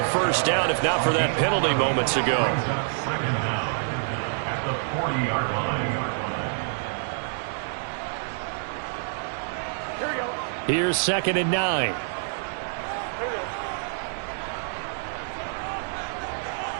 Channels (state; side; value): silent; left; 60 dB below the other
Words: first down if not for that penalty moments ago. Second down at the 40-yard line. Here's 2nd and 9.